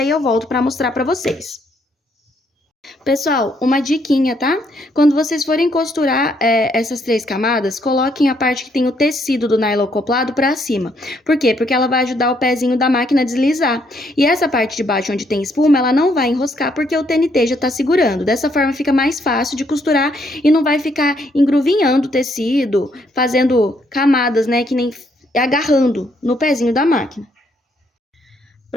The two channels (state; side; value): normal; both; correlation 0.71